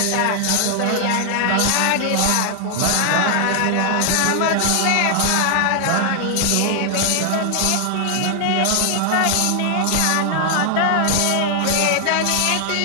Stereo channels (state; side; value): different; both; correlation 0.00